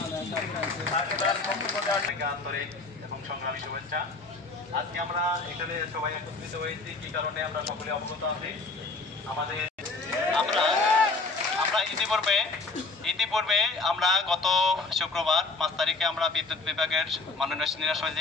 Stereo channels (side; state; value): right; quieter; 3.7 dB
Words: আন্তরিক এবং সংগ্রামী শুভেচ্ছা। আজকে আমরা এখানে সবাই একত্রিত হয়েছি কি কারণে আমরা সকলে অবগত আছি। আমাদের আমরা ইতিপূর্বে আমরা গত শুক্রবার 5 তারিখে আমরা বিদ্যুৎ বিভাগের মাননীয় সিনিয়র